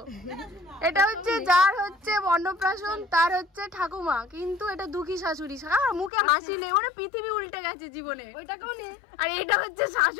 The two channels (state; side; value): drops out; right; at 6.1 s